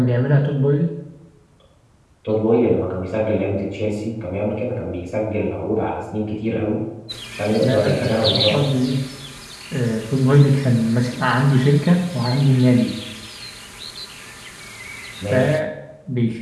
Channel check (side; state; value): both; identical; correlation 1.00